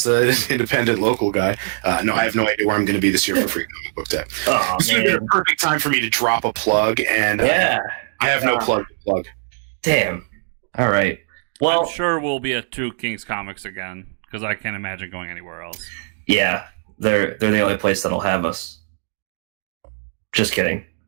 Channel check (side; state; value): left; silent; digital silence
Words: an independent local guy, no, I have no idea where I'm going to be this year for Free Comic Book Day. This would be a perfect time for me to drop a plug, and I have no plug to plug. Damn. All right. Well, I'm sure we'll be at Two Kings Comics again, because I can't imagine going anywhere else. Yeah, they're the only place that'll have us. Just kidding.